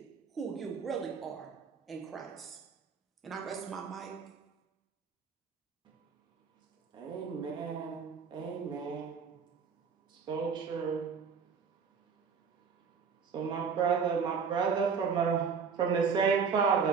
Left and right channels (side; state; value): left; quieter; 6.0 dB